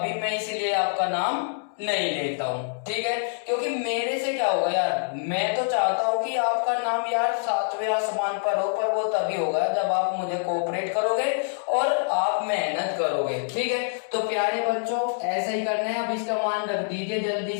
मैं इसीलिए आपका नाम नहीं लेता हूँ, ठीक है, क्योंकि मेरे से क्या होगा यार, मैं तो चाहता हूँ कि आपका नाम यार 7वें आसमान पर हो, पर वो तभी होगा जब आप मुझे कोऑपरेट करोगे और आप मेहनत करोगे। ठीक है, तो प्यारे बच्चों ऐसा ही करना है। अब इसका मान रख दीजिए, जल्दी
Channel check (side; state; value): right; silent; digital silence